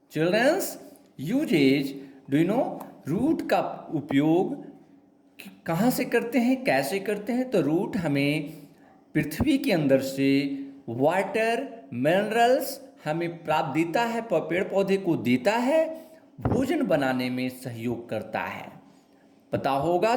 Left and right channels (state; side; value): identical; both; correlation 1.00